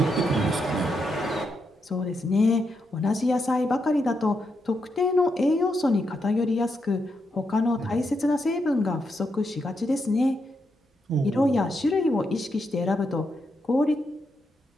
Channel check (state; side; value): normal; both; correlation 0.82